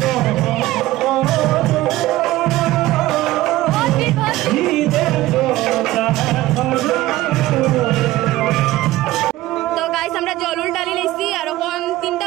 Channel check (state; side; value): quieter; left; 16.7 dB